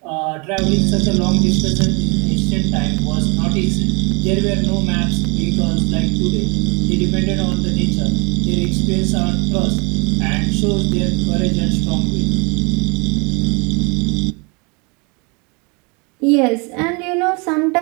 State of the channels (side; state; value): left; quieter; 31.2 dB